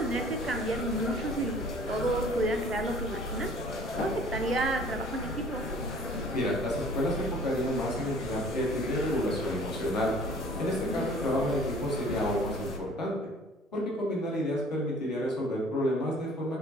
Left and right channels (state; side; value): normal; both; correlation 0.51